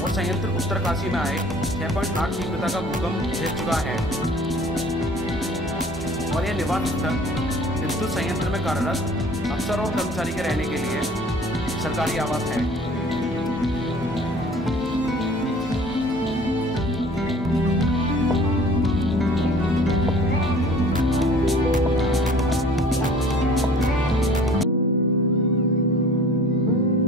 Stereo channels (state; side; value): normal; both; correlation 0.49